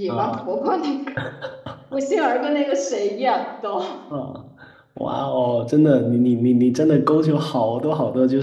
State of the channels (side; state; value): both; identical; correlation 1.00